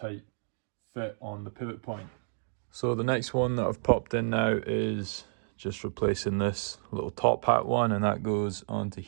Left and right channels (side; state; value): left; silent; digital silence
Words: fit on the pivot point. So the next one that I've popped in now is just replacing this little top hat one, and that goes onto